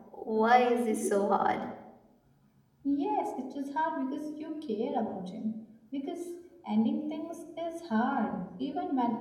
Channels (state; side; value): identical; both; correlation 1.00